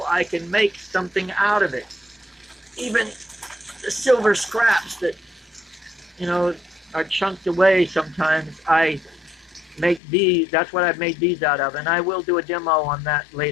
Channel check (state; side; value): drops out; right; at 10.0 s